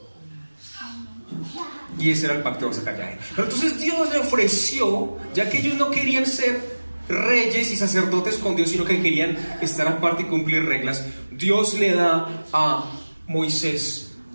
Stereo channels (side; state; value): both; inverted; correlation -1.00